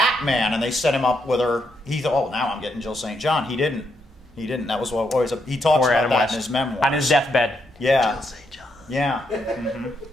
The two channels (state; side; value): normal; both; correlation 0.79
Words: and they set him up with her, he thought, "Oh, now I'm getting Jill St. John." He didn't. That was what always. He talks Poor about Adam that West. in his memoir. On his deathbed. Yeah. Jill St. John. Yeah.